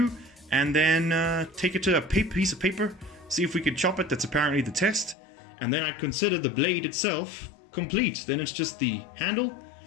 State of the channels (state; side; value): drops out; right; at 5.2 s